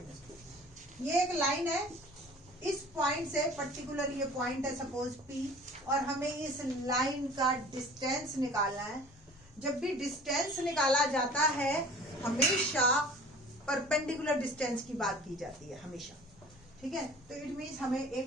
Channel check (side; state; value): left; noise; rumble, 25 dB below the sound